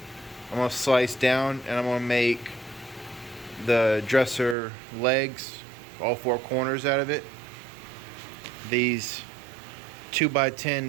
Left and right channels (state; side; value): drops out; left; at 4.5 s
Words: I'm going to slice down and I'm going to make the dresser legs, all four corners out of it. These